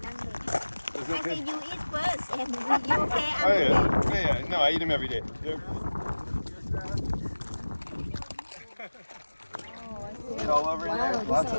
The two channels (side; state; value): both; inverted; correlation -1.00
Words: I say you eat first and you okay? Oh yeah. No, I eat them every day. It's all over in there. Lots of